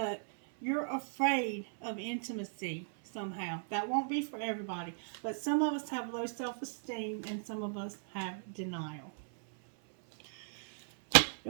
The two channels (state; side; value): silent; left; 53 dB below the other